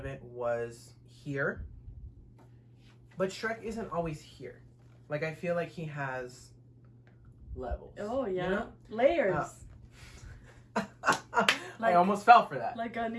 it was here, but SHREK isn't always here. Like I feel like he has levels. Oh yeah, you know? layers. I almost fell for that. Like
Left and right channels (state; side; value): identical; both; correlation 1.00